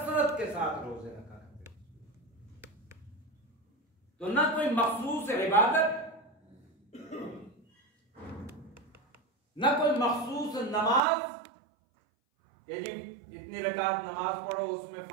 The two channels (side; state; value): left; drops out; at 11.0 s